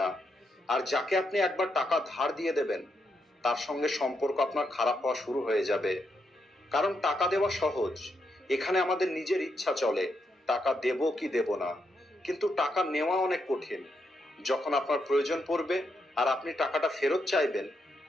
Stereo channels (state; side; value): normal; both; correlation 0.81